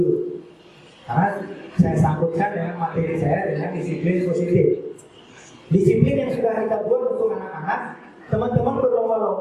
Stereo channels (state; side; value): identical; both; correlation 1.00